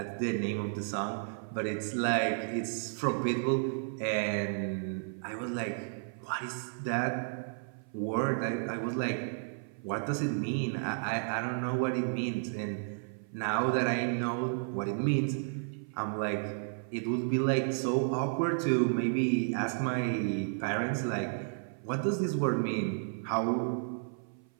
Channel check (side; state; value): left; silent; 56 dB below the other